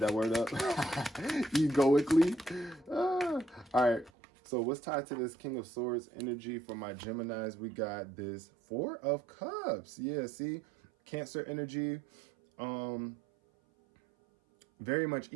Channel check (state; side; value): drops out; left; at 4.1 s